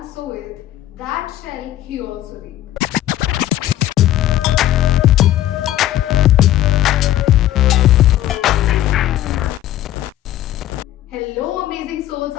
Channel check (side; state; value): right; quieter; 13.1 dB